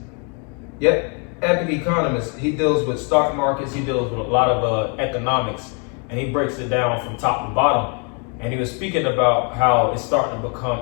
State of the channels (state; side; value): quieter; right; 37.5 dB